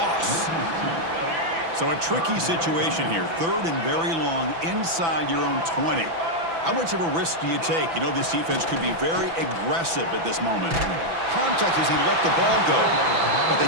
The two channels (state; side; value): late; left; 6.0 ms